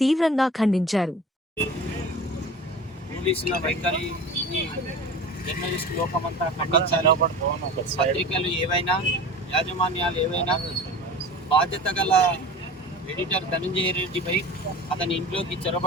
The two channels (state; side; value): normal; both; correlation 0.36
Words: తీవ్రంగా ఖండించారు. పోలీసుల వైఖరి జర్నలిస్ట్ లోకమంతా ఖండించారు. పత్రికలు ఏవైనా, యాజమాన్యాలు ఏవైనా బాధ్యత గల ఎడిటర్ ధనంజయ రెడ్డిపై అతని ఇంట్లోకి